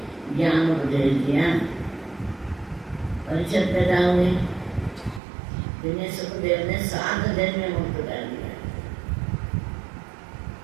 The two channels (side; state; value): left; drops out; at 5.2 s